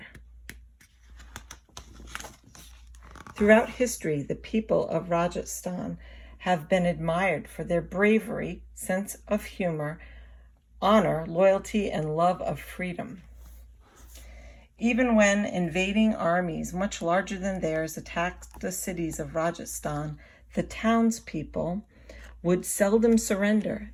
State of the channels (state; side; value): identical; both; correlation 1.00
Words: Throughout history, the people of Rajasthan have been admired for their bravery, sense of humor, honor, loyalty, and love of freedom. Even when invading armies much larger than theirs attacked the cities of Rajasthan, the townspeople would seldom surrender